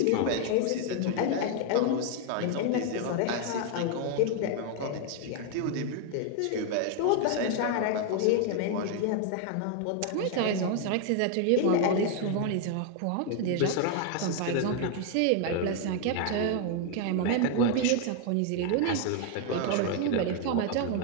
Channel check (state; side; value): different; both; correlation 0.01